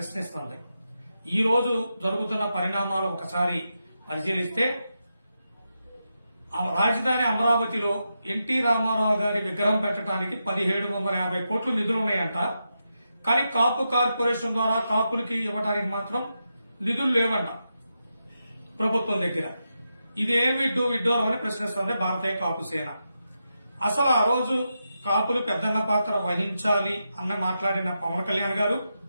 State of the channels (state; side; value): inverted; both; correlation -0.87